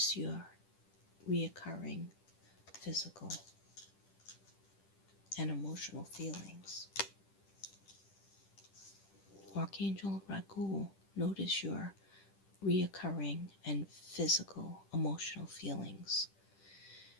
your reoccurring physical and emotional feelings. Archangel Bragul, notice your reoccurring and physical emotional feelings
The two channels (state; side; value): late; right; 10 ms